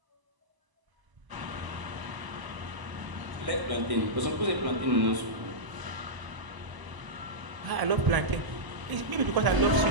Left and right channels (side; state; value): left; late; 1.0 ms